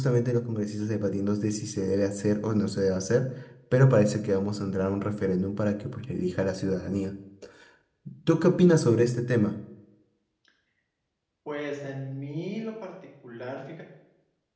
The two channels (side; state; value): both; identical; correlation 1.00